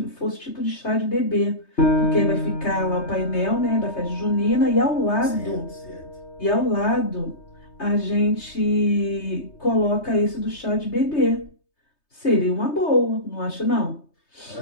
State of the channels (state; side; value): late; right; 3.2 ms